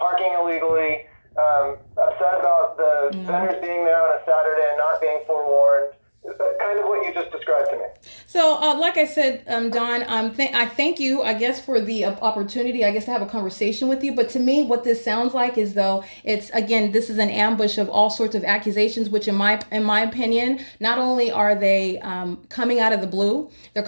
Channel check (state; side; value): inverted; both; correlation -1.00